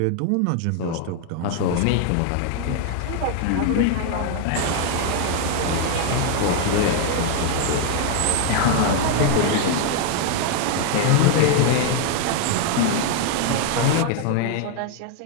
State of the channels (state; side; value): different; both; correlation 0.00